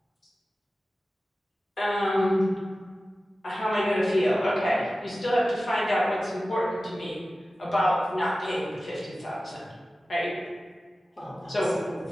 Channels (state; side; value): normal; both; correlation 0.95